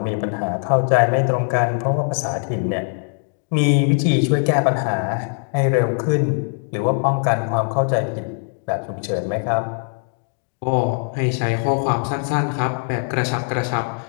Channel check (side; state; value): right; silent; 57 dB below the other